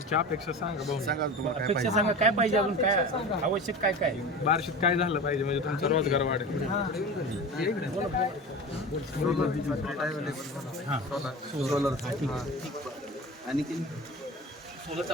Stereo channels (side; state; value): both; normal; correlation 0.31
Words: अपेक्षा सांगा भाऊ. सांगा तुम्हाला काय अपेक्षा सांगा काय पाहिजे अजून काय आवश्यक काय काय बार्शीत काय झालं पाहिजे म्हणजे तुमचा रोजगार वाढेल. सोलर आणखी सोलरचं